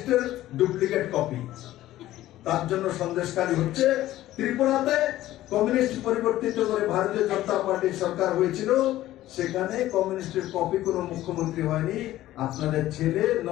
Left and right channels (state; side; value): quieter; right; 14.8 dB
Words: ডুপ্লিকেট কপি, তার জন্য সন্দেশখালী হচ্ছে। ত্রিপুরাতে কমিউনিস্ট পরিবর্তিত করে ভারতীয় জনতা পার্টির সরকার হয়েছিল, সেখানে কমিউনিস্টের কপি কোন মুখ্যমন্ত্রী হয়নি। আপনাদের ছেলে